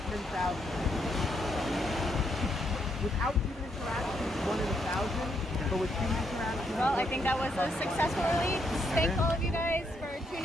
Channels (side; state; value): both; normal; correlation 0.76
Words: Without human interaction, it's 1 in 1,000. But with human interaction, Well, I think that was a successful release. Thank all of you guys for